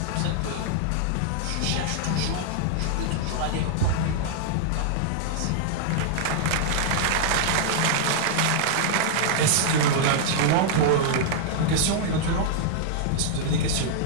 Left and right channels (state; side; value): different; both; correlation -0.01